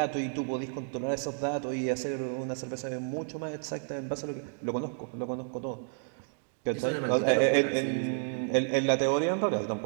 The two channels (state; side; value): silent; left; 57 dB below the other